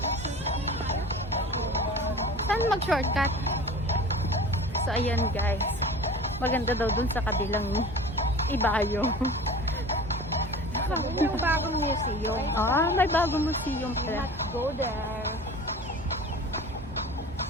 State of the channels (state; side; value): normal; both; correlation 0.38